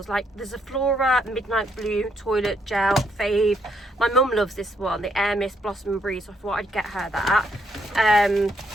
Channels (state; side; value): normal; both; correlation 0.74